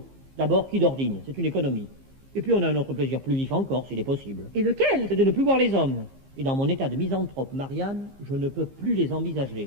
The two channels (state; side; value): late; left; 15 ms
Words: D'abord, qui dordine, c'est une économie. Et puis, on a un autre plaisir plus vif encore, s'il est possible. Et lequel? C'est de ne plus voir les hommes. Et dans mon état de misanthrope, Marianne, je ne peux plus les